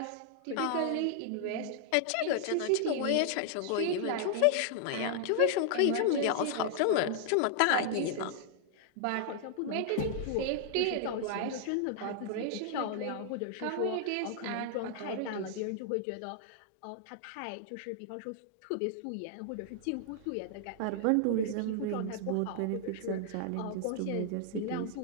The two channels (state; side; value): different; both; correlation -0.01